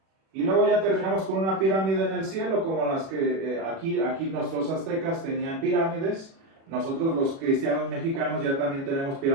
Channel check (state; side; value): late; left; 36 ms